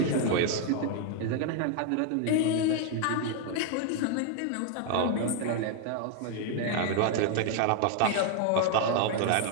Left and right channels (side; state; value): both; different; correlation 0.00